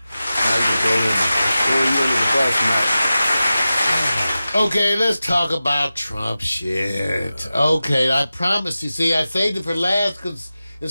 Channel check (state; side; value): inverted; both; correlation -0.94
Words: you can throw you under the bus, Mike. Okay, let's talk about Trump shit. Okay, I promise you. See, I saved it for last because